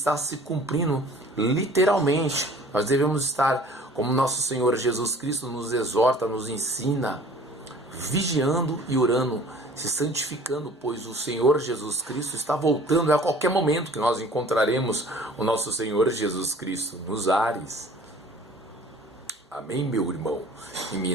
se cumprindo literalmente. Nós devemos estar, como nosso Senhor Jesus Cristo nos exorta, nos ensina, vigiando e orando, se santificando, pois o Senhor Jesus Cristo está voltando. É a qualquer momento que nós encontraremos o nosso Senhor Jesus Cristo nos ares. Amém, meu irmão e minha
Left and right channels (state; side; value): normal; both; correlation 0.49